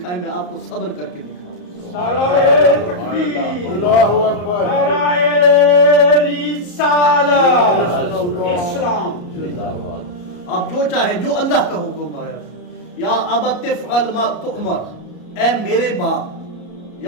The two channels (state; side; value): late; right; 33 ms